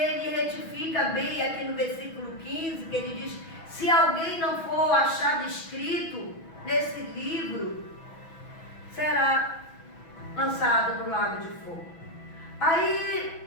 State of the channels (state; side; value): late; right; 6.1 ms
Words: retifica bem aqui no versículo 15, que ele diz: se alguém não for achado escrito nesse livro, será lançado no lago de fogo.